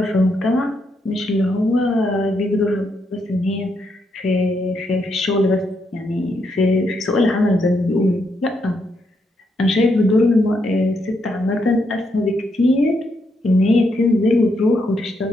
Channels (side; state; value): both; normal; correlation 0.79